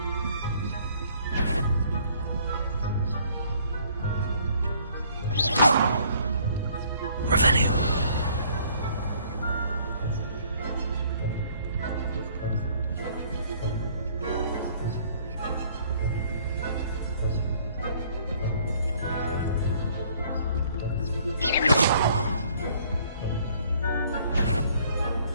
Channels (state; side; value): inverted; both; correlation -0.59